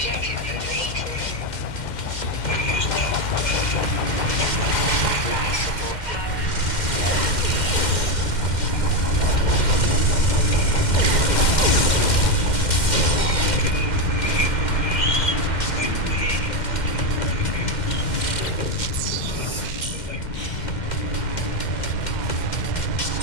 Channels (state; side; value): late; right; 2.1 ms